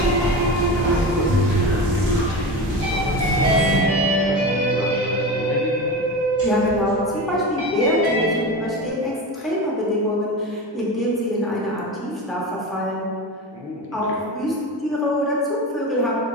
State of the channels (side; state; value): both; normal; correlation 0.26